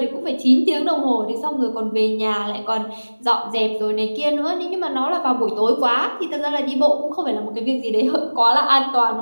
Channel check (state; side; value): inverted; both; correlation -1.00